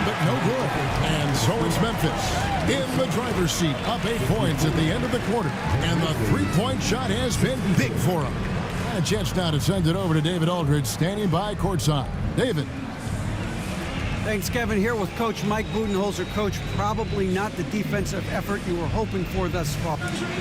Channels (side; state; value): both; identical; correlation 1.00